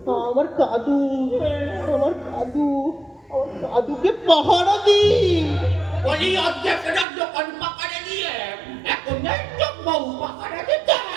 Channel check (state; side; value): drops out; left; at 7.1 s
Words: আমার কাদু আমার কাদু আমার কাদুকে পাহারা দিই বলি অর্ধেক রাত দোকান পাকারে দিয়ে এখন নেই তো বউ পাকারে দিতে।